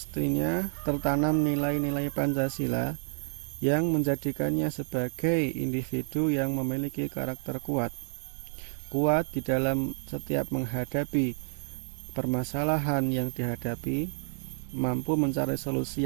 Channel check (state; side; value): silent; left; digital silence